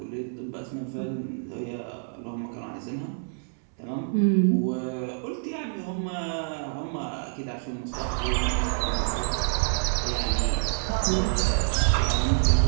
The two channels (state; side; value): silent; left; 60 dB below the other